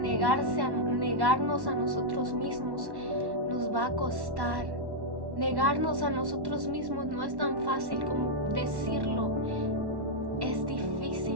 a nosotros mismos nos va a costar. Negarnos a nosotros mismos no es tan fácil como decirlo. Es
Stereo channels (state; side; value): late; left; 1.1 ms